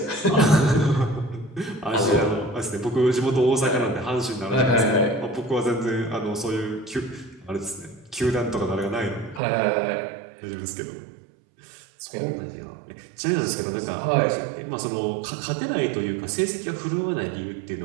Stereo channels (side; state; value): left; drops out; at 9.4 s